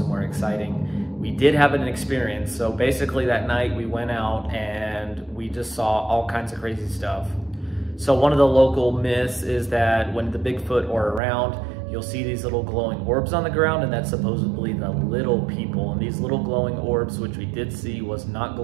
exciting. We did have an experience. So basically that night we went out and we just saw all kinds of crazy stuff. So one of the local myths is that when the Bigfoot are around, you'll see these little glowing orbs on the ground, and that's supposedly the little people. And these little glowing orbs, which we did see, was not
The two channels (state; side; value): drops out; left; at 11.2 s